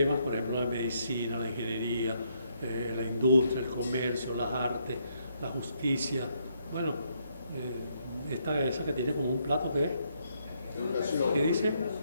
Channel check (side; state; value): both; inverted; correlation -0.74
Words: por ejemplo, la medicina, la ingeniería, la industria, el comercio, las artes, la justicia. Bueno, esa que tiene como un plato, ¿qué es? Educación. ¿Qué dice?